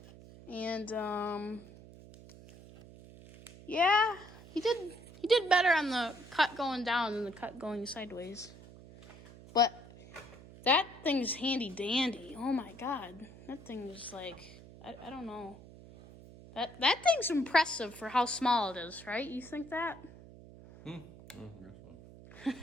And yeah, he did better on the cut going down than the cut going sideways. But that thing's handy dandy. Oh my god. That thing is like I don't know. That thing's impressive for how small it is, right? You think that? This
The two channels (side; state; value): right; noise; hum, 18 dB below the sound